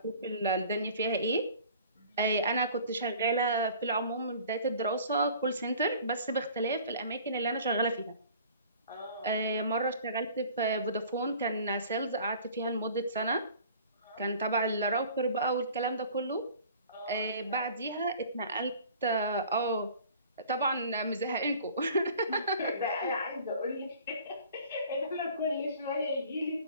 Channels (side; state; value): both; inverted; correlation -0.48